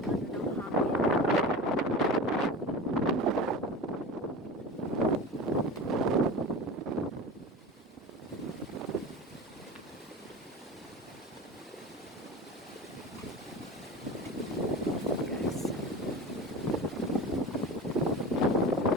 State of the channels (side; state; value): both; normal; correlation 0.32